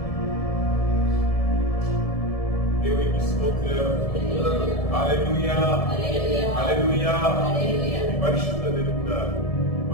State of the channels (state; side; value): late; right; 1.7 ms